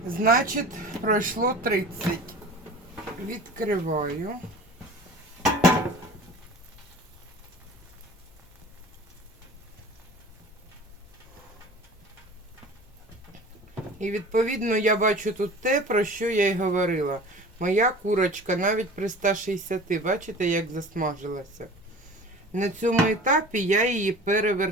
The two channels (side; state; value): left; noise; rumble, 26 dB below the sound